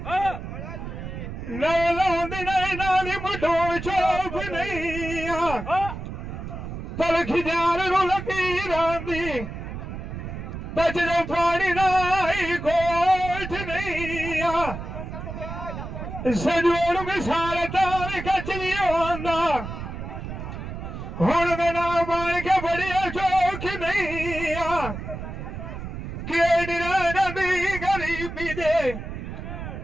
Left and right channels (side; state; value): right; noise; rumble, 8 dB below the sound